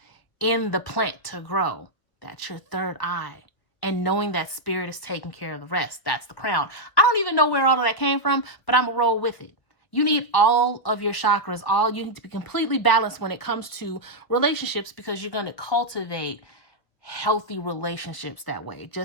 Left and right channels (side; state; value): right; late; 1.4 ms